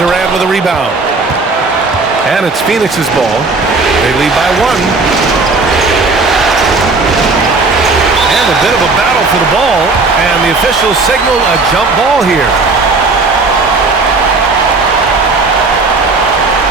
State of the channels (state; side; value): quieter; left; 3.8 dB